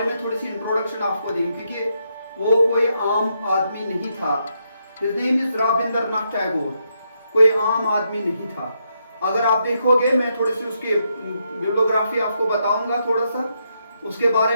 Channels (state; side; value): inverted; both; correlation -0.79